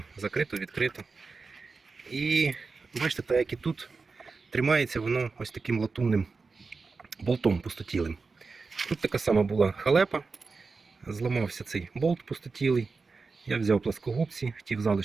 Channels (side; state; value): left; quieter; 4.4 dB